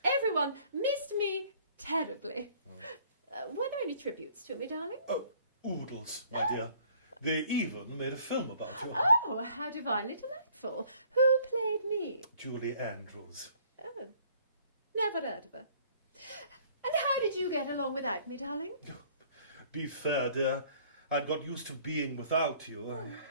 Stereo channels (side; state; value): both; inverted; correlation -0.58